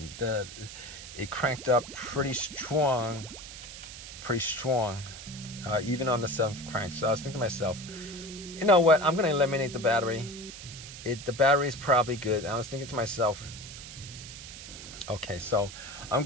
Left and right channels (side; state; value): right; noise; hiss, 13 dB below the sound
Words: It cranked up pretty strong, even on the 7th crank. So I was thinking to myself, you know what, I'm going to eliminate the battery. The battery is probably good. And I was thinking to myself, okay, so I'm